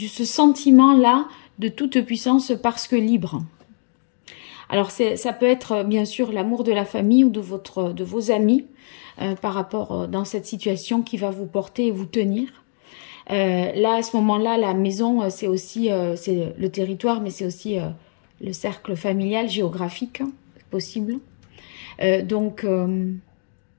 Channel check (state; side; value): silent; right; digital silence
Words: sentiment-là de toute puissance parce que libre. Alors, ça peut être bien sûr l'amour de la famille ou de vos amis, par rapport dans cette situation qui va vous porter et vous tenir. Là, à ce moment-là, la maison, c'est aussi c'est le territoire, mais c'est aussi le cercle familial, géographique, c'est possible. Donc,